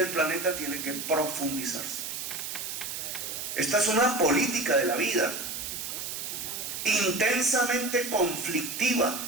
planeta tiene que profundizarse. Esta es una política de la vida, intensamente conflictiva,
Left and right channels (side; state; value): right; noise; hiss, 5 dB below the sound